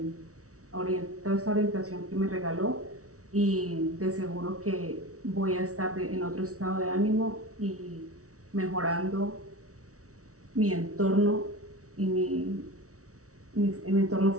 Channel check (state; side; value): late; left; 0.65 ms